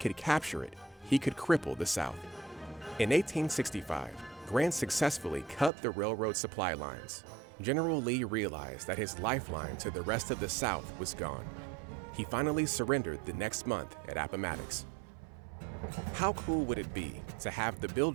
capture it, he could cripple the South. In 1865, Grant successfully cut the railroad supply lines. General Lee realized that his lifeline to the rest of the South was gone. He finally surrendered the next month at Appomattox. How cool would it be to have the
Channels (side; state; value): left; drops out; at 5.7 s